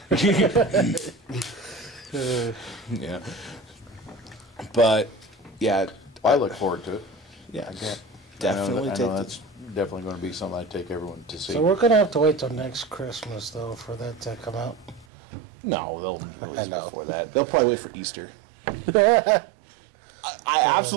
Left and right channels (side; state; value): left; drops out; at 15.1 s